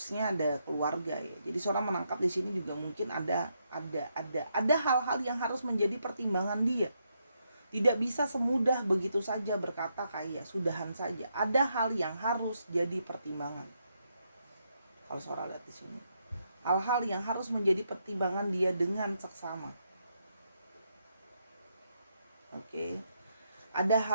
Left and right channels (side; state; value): both; inverted; correlation -0.79